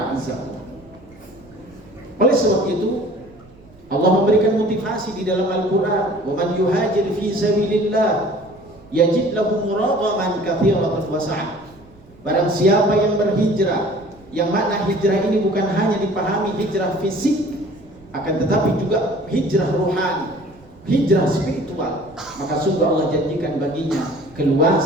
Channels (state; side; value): noise; right; rumble, 25 dB below the sound